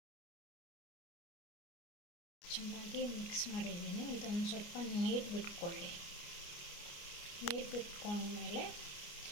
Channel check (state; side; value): late; right; 29 ms